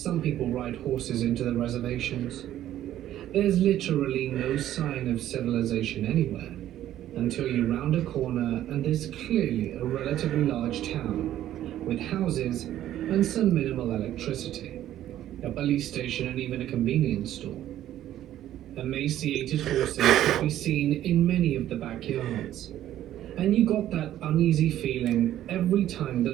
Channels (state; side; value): quieter; left; 12.5 dB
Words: people ride horses into the reservations. There's literally no sign of civilization anywhere until you round a corner and there's clearly a relatively large town with houses and some minimal electricity, a police station and even a convenience store. Emaciated horses could be seen in many of the backyards, and you got that uneasy feeling every time the